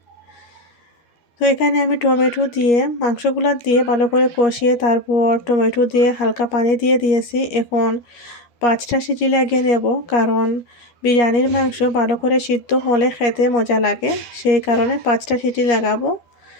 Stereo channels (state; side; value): late; right; 13 ms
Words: তো এখানে আমি টমেটো দিয়ে মাংসগুলো দিয়ে ভালো করে কষিয়ে তারপর টমেটো দিয়ে হালকা পানি দিয়ে দিয়েছি। এখন 5টা সিটি লাগিয়ে নেব, কারণ বিরিয়ানির মাংস ভালো করে সিদ্ধ হলে খেতে মজা লাগে, সেই কারণে 5টা সিটি লাগাবো।